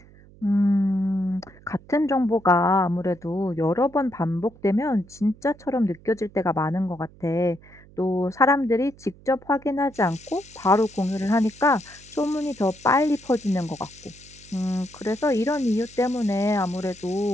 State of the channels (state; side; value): noise; right; hum, 24 dB below the sound